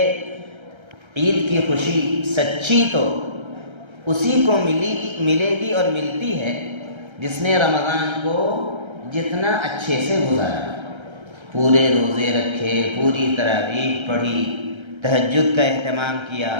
عید کی خوشی سچی تو اسی کو ملے گی اور ملتی ہے جس نے رمضان کو جتنا اچھے سے گزارا، پورے روزے رکھے، پوری تراویح پڑھی، تہجد کا اہتمام کیا،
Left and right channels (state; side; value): late; left; 1.3 ms